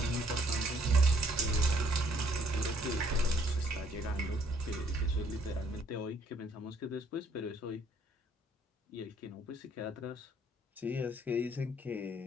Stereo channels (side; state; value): both; normal; correlation 0.65